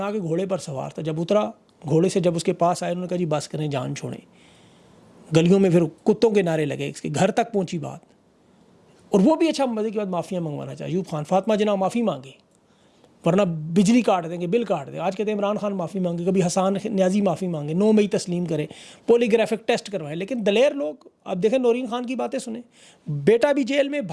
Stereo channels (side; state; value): both; identical; correlation 1.00